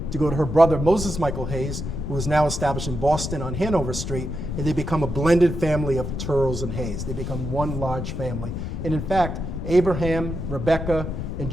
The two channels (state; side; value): noise; left; rumble, 4 dB below the sound